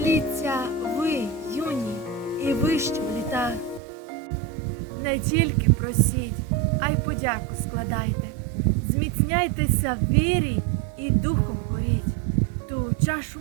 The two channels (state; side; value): drops out; left; at 3.8 s